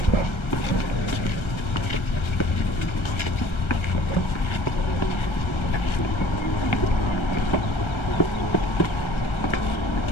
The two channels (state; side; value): late; right; 1.4 ms